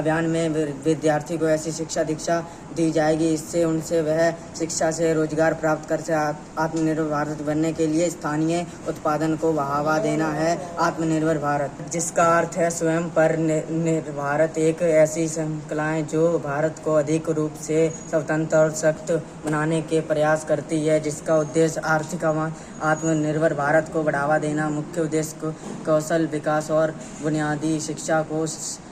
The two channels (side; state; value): both; identical; correlation 1.00